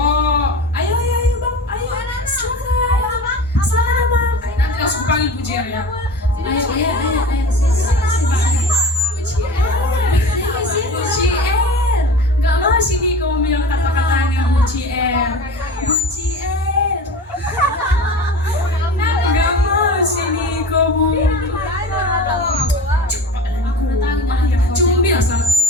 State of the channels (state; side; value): normal; both; correlation 0.35